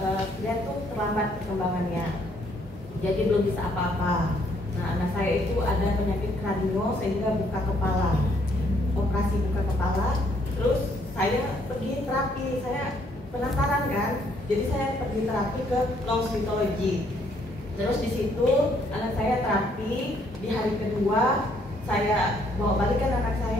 dia tuh terlambat perkembangannya, jadi belum bisa apa-apa. Nah, anak saya itu ada penyakit kranio sehingga buka kepala, operasi buka kepala. Terus saya pergi terapi, saya penasaran kan, jadi saya pergi terapi ke psikologi. Terus di situ anak saya terapi, di hari kedua saya bawa balikan anak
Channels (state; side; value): normal; both; correlation 0.68